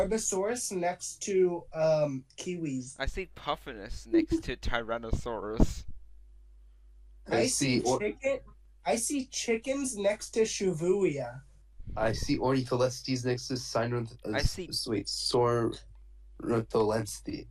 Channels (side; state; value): both; identical; correlation 1.00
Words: next to kiwis. I see Puffinus next to Tyrannosaurus. I see chickens next to Shibuya. I see Ornitholestes next to Sornitholestes.